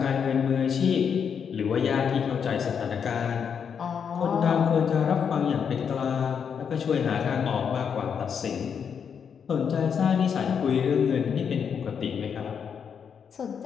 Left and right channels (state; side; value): quieter; right; 7.1 dB